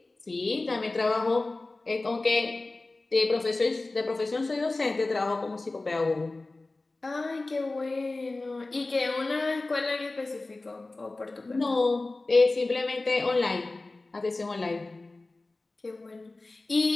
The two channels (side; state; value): right; quieter; 3.2 dB